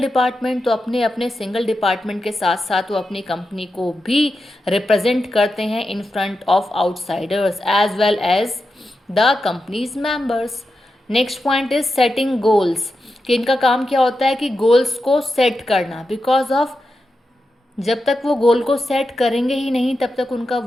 तो अपने अपने सिंगल डिपार्टमेंट के साथ साथ वो अपनी कंपनी को भी रिप्रेजेंट करते हैं in front of outsiders as well as the companies members. Next point is setting goals, कि इनका काम क्या होता है कि गोल्स को सेट करना। बिकॉज ऑफ जब तक वो गोल को सेट करेंगे ही नहीं तब तक उनका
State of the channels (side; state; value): both; normal; correlation 0.89